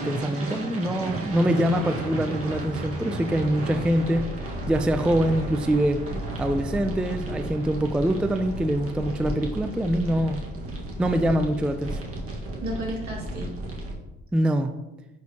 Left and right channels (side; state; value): both; normal; correlation 0.84